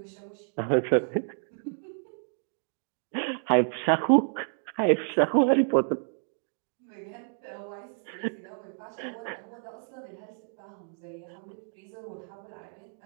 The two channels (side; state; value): left; silent; digital silence